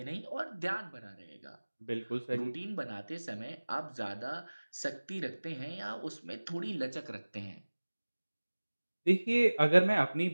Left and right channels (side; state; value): both; inverted; correlation -1.00